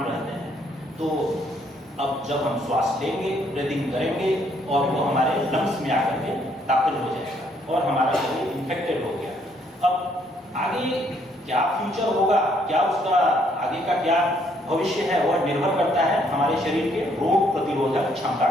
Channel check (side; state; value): both; normal; correlation 0.68